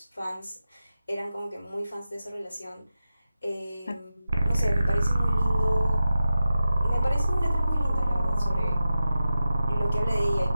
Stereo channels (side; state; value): both; inverted; correlation -0.93